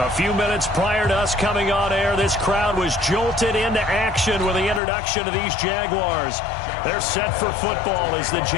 few minutes prior to us coming on air, this crowd was jolted into action with the introduction of these Jaguars. They're set for football as the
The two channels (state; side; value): drops out; right; at 4.8 s